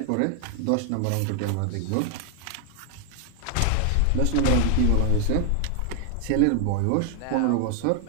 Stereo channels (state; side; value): different; both; correlation 0.00